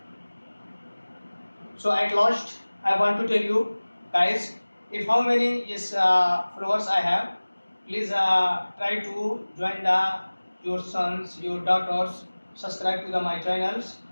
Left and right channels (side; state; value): both; inverted; correlation -1.00